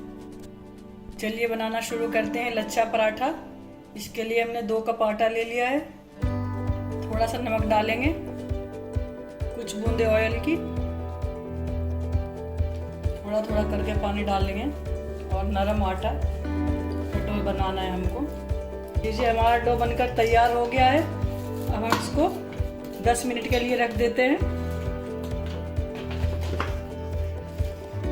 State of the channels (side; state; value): both; identical; correlation 1.00